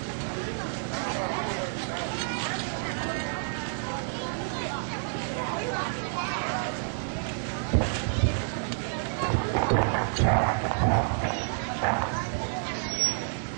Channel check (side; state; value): left; silent; digital silence